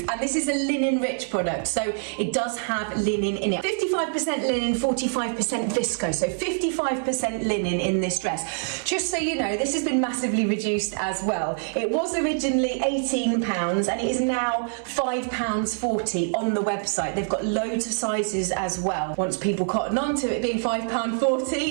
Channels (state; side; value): silent; left; digital silence